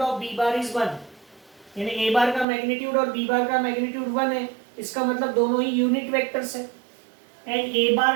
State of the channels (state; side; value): drops out; left; at 2.5 s